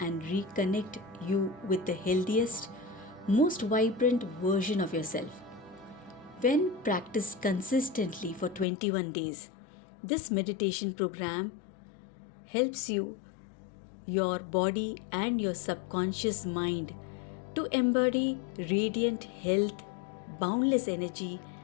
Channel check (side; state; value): right; drops out; at 8.7 s